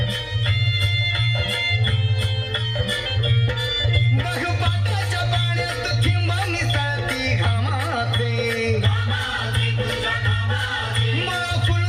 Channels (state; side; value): identical; both; correlation 1.00